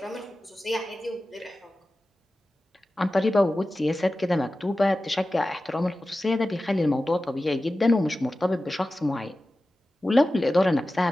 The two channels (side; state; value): both; normal; correlation 0.95